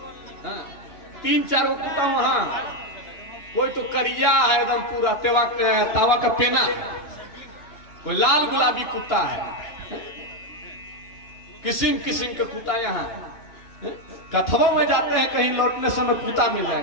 3-4 गो कुत्ता वहां। कोई तो करिया है एकदम पूरा तावा का पेना, कोई लाल गुलाबी कुत्ता है, किस्म किस्म के कुत्ता यहाँ। कथवा में जाते हैं कहीं लौटने समय कुत्ता मिल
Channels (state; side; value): late; right; 3.3 ms